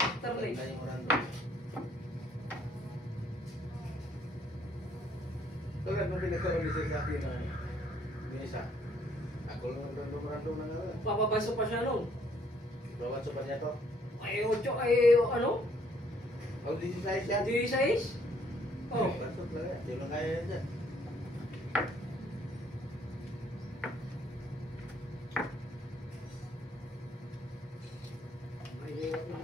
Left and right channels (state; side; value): normal; both; correlation 0.65